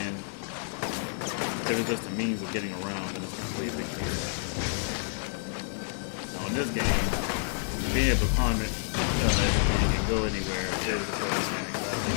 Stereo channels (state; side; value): silent; right; digital silence